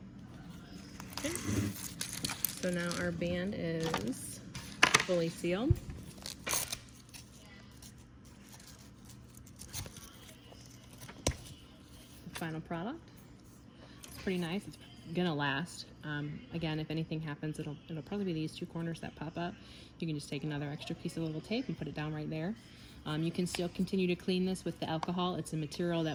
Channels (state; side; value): identical; both; correlation 1.00